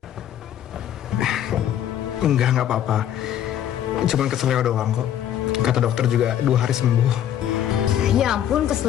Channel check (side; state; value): right; quieter; 10.7 dB